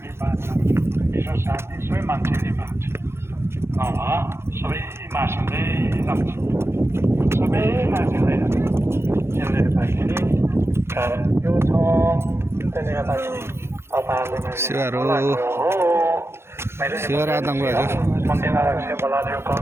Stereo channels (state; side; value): late; left; 0.12 ms